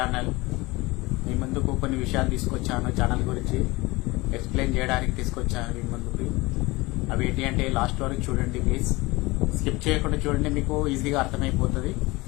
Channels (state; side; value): quieter; right; 22.4 dB